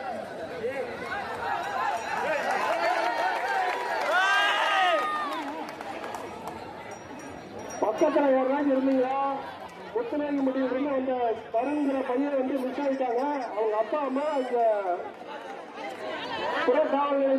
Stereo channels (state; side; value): identical; both; correlation 1.00